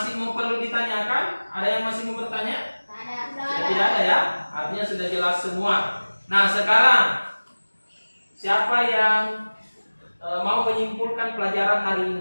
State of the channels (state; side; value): inverted; both; correlation -1.00